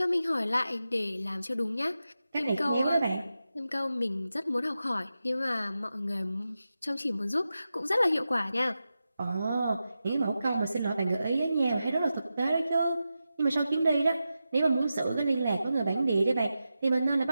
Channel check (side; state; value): both; inverted; correlation -0.91